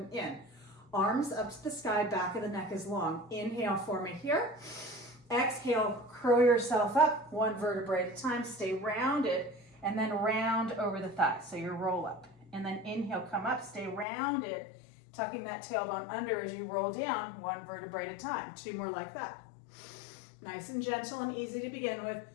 in. Arms up to the sky, back of the neck is long. Inhale, form it here. Exhale, curl yourself up, 1 vertebrae at a time, stay rounded, and then round over the thighs, so your roll up. And then inhale, come up, stay rounded, tucking that tailbone under as you roll down, 1 vertebrae at a time. 2 more like that. Nice and gentle and easy to begin with.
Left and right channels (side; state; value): right; drops out; at 14.1 s